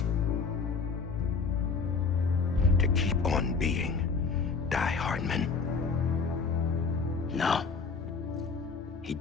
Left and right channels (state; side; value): quieter; right; 5.0 dB